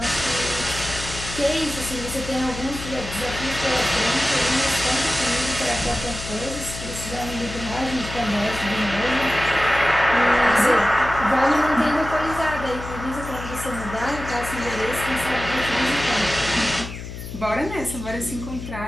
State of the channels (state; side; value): noise; left; hum, 10 dB below the sound